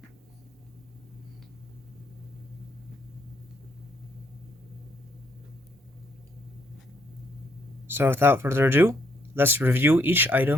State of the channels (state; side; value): normal; both; correlation 0.71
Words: So without further ado, let's review each